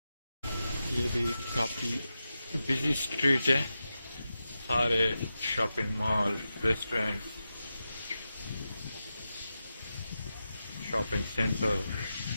ये भी काफ़ी बिजी स्ट्रीट है, सारे shopping mall, restaurant, shopping centre,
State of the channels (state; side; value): inverted; both; correlation -0.91